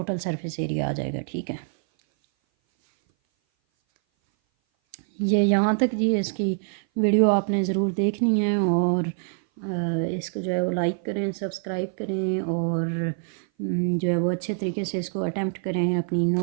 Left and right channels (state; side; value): silent; left; 58 dB below the other